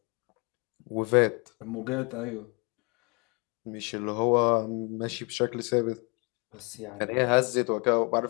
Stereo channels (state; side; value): quieter; right; 31.2 dB